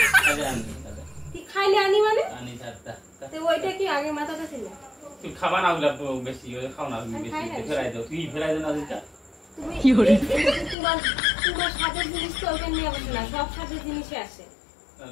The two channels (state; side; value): drops out; right; at 10.8 s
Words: কি খাইলে আনি মানে আনি দাদা তো ওইটা কি আগে মাথাটা ছিল তুই খাবা না ওগুলা বেশি খাও না বেশি ফেরাই দাও তুই ফেরাই দাও না দিটা তুমি কি করে তোমার সাদের জিনিস তো ওখানে নিয়ে বসে না সব সাদের জিনিসই আসে